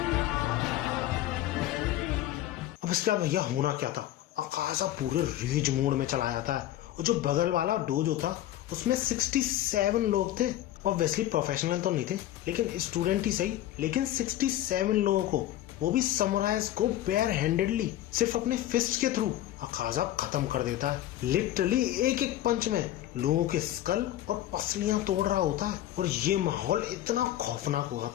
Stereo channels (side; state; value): right; quieter; 13.5 dB